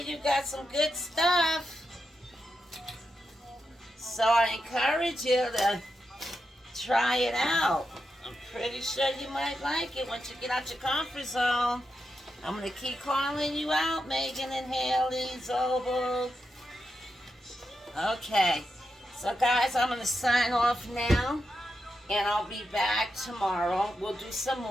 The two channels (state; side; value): normal; both; correlation 0.87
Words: you got some good stuff. So I encourage you to try it out. I'm pretty sure you might like it once you get out your comfort zone. I'm going to keep calling you out, Megan and Haley Zobel. Okay. So guys, I'm going to sign off now. And I'll be back tomorrow. We'll do some